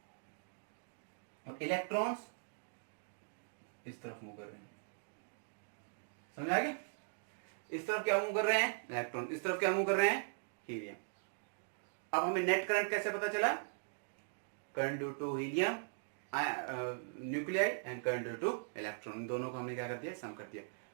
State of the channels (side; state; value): left; silent; digital silence